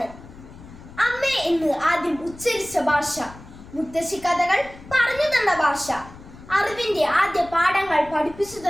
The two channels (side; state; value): left; noise; rumble, 18 dB below the sound